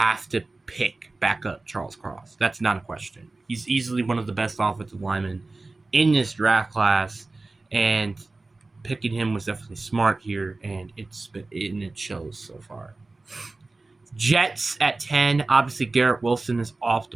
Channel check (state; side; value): quieter; left; 3.3 dB